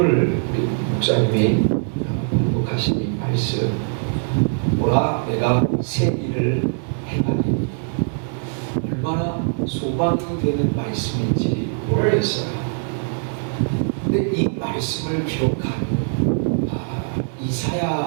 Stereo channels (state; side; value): silent; left; 64 dB below the other